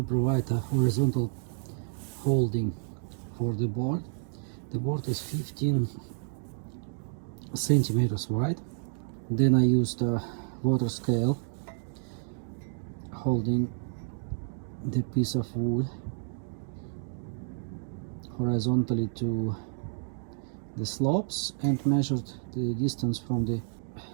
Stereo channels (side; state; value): left; silent; digital silence